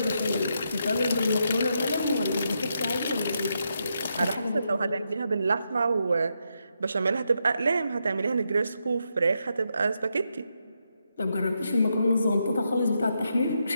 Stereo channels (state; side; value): inverted; both; correlation -0.82